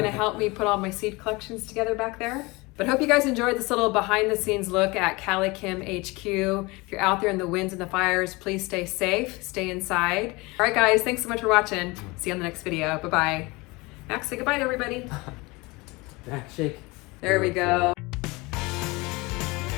to help me put all my seed collections together back there? But hope you guys enjoyed this little behind the scenes look at CaliKim HQ. If you're out there in the winds and the fires, please stay safe, stay inside. All right, guys, thanks so much for watching. See you on the next video. Bye-bye. Max, say goodbye to everybody. Back shake. There we go.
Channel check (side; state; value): right; quieter; 24.3 dB